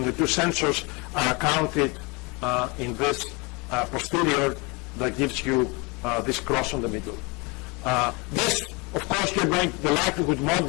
the two sensors are counted in this posterior that gives you this cross on the middle. This, of course, you're going to the likelihood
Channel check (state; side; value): quieter; right; 28.7 dB